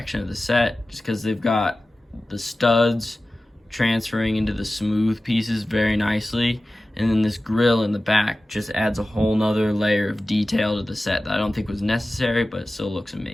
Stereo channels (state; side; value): normal; both; correlation 0.95